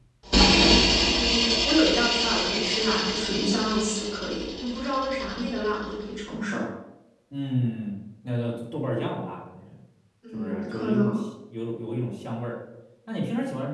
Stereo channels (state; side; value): identical; both; correlation 1.00